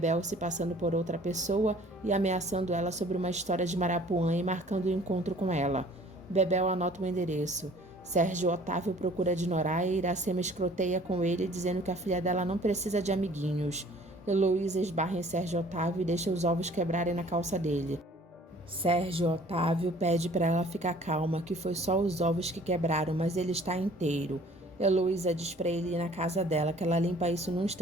se passando por outra pessoa e ameaçando ela sobre uma história de Marapuã e marcando o encontro com ela. Bebel anota o endereço. Sérgio Otávio procura de Noraia e Iracema escroteia com ele, dizendo que a filha dela não precisa de amiguinhos. Heloísa esbarra em Sérgio Otávio e deixa os ovos quebrarem na calça dele. Sérgio Otávio pede para ela ficar calma, que foi só os ovos que quebraram, mas ele está inteiro. Heloísa diz para ele ir na casa dela, que ela limpa isso num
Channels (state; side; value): normal; both; correlation 0.53